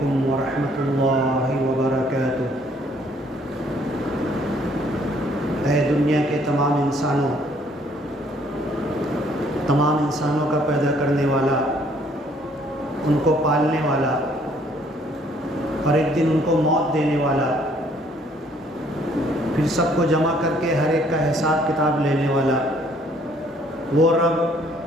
ورحمۃ اللہ وبرکاتہ۔ اے دنیا کے تمام انسانوں کا پیدا کرنے والا، ان کو پالنے والا اور ایک دن ان کو موت دینے والا، پھر سب کو جمع کر کے ہر ایک کا حساب کتاب لینے والا، وہ رب،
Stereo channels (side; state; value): both; normal; correlation 0.62